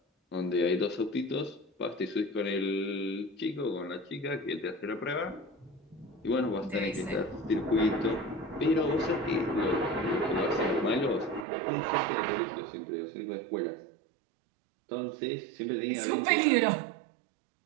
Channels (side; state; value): left; drops out; at 11.5 s